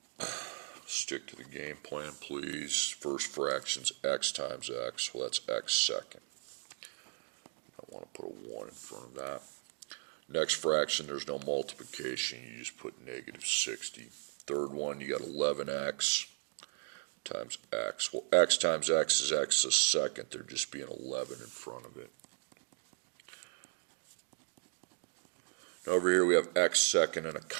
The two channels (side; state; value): left; silent; digital silence